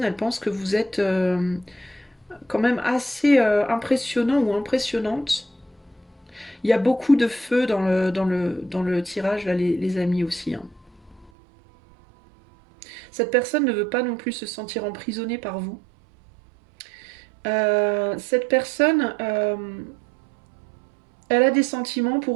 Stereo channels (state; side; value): drops out; left; at 11.3 s